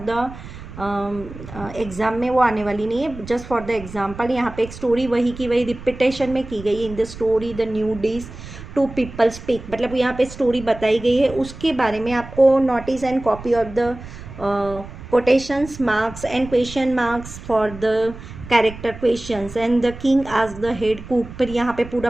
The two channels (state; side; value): noise; right; rumble, 14 dB below the sound